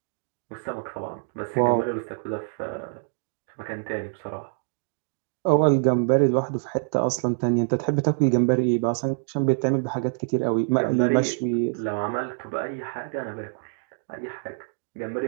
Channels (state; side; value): silent; left; digital silence